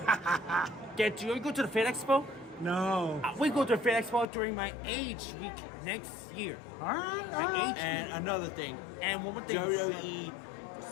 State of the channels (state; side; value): drops out; right; at 4.2 s